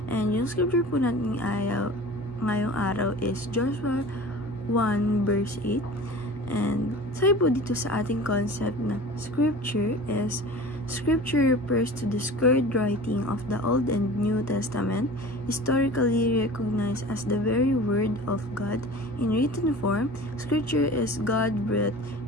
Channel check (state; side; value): normal; both; correlation 0.39